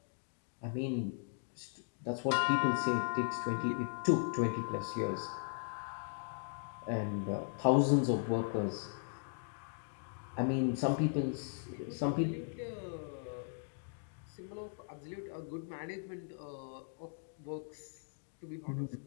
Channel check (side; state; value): right; silent; digital silence